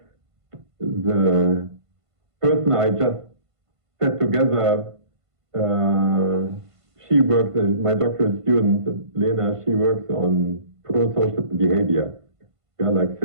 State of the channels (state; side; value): late; left; 1.5 ms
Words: the person I just set together, she works, my doctoral student, Lena, she works on pro-social behavior. Yeah, like